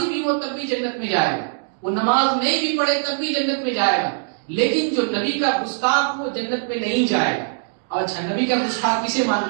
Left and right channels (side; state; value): left; silent; digital silence